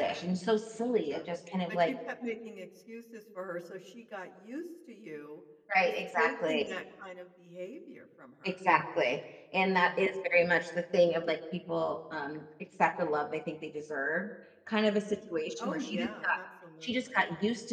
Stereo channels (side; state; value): both; identical; correlation 1.00